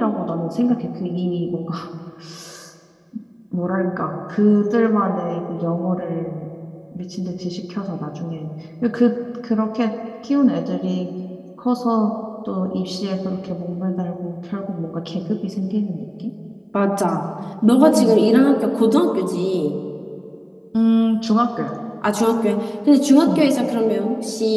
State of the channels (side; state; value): both; identical; correlation 1.00